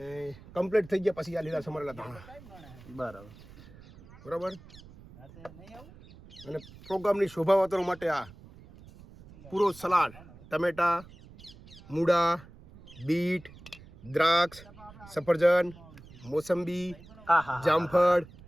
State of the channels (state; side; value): noise; right; rumble, 20 dB below the sound